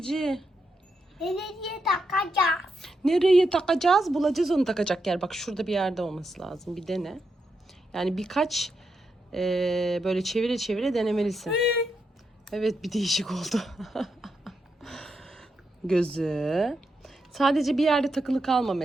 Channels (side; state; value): both; normal; correlation 0.83